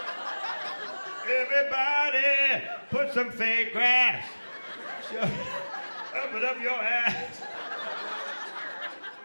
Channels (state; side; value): inverted; both; correlation -1.00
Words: Everybody, put some fake grass. Up it up your ass.